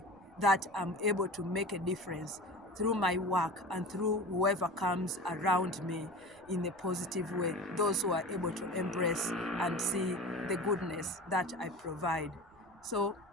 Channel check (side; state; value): right; noise; rumble, 29 dB below the sound